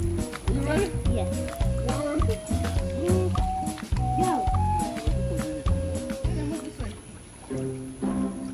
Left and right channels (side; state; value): both; identical; correlation 1.00